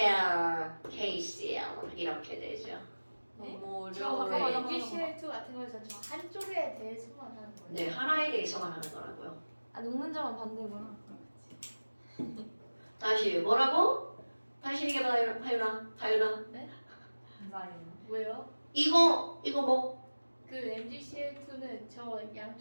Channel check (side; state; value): both; inverted; correlation -1.00